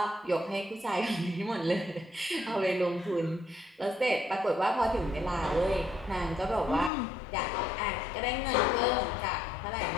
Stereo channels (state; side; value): drops out; right; at 6.9 s